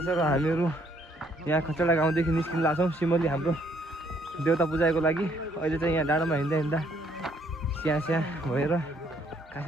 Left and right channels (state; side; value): normal; both; correlation 0.67